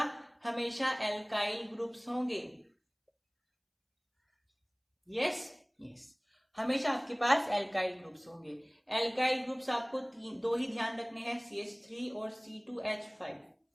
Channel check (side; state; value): both; identical; correlation 1.00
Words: हमेशा एल्काइल ग्रुप्स होंगे। यस यस, हमेशा आपके पास एल्काइल ग्रुप्स होंगे। एल्काइल ग्रुप्स आपको दो ही ध्यान रखने हैं, CH3 और C2H5,